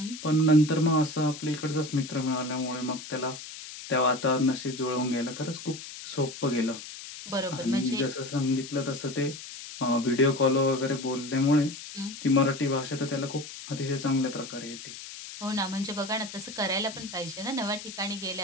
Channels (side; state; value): left; noise; hiss, 12 dB below the sound